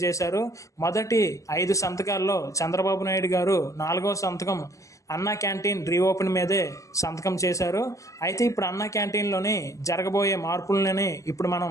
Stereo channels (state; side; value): late; right; 0.16 ms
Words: మొదటి 5 సంతకాల్లో చంద్రబాబు నాయుడు గారు 4వ సంతకం అన్నా క్యాంటీన్ రీఓపెన్ మీదే సంతకం చేశారు. అయితే ఇప్పుడు అన్నా క్యాంటీన్లోని జరగబోయే మార్పులని ఇప్పుడు